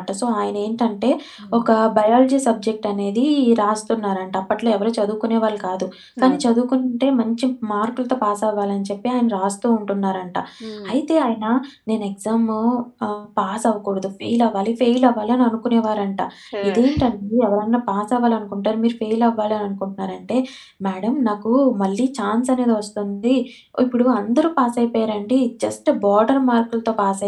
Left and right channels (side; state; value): both; identical; correlation 1.00